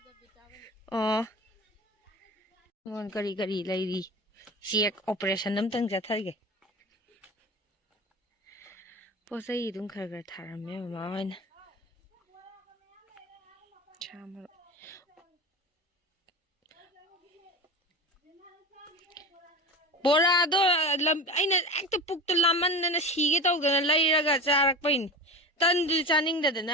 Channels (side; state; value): both; normal; correlation 0.30